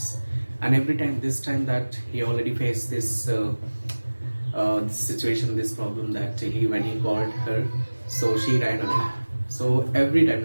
And every time, this time that he already faced this situation, this problem, that he when he called her, so she ran away. So every time,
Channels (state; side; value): inverted; both; correlation -1.00